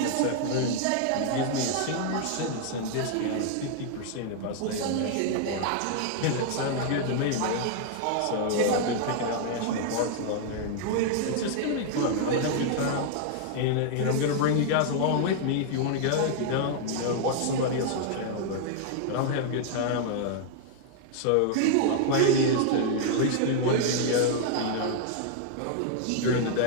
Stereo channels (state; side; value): different; both; correlation 0.00